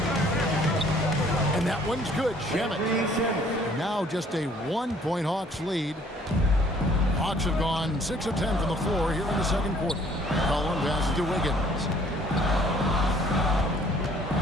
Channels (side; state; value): both; normal; correlation 0.59